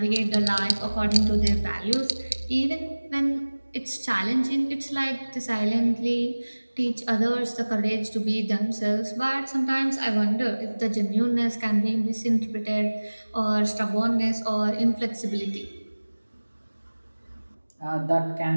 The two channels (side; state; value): both; inverted; correlation -1.00